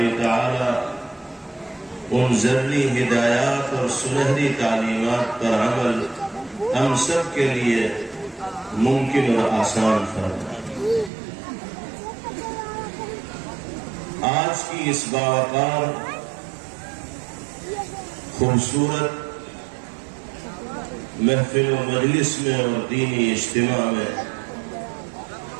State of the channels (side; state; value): left; drops out; at 11.1 s